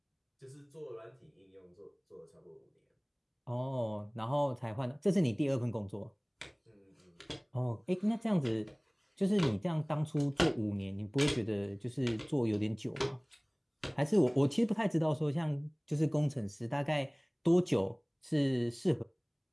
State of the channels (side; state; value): both; identical; correlation 1.00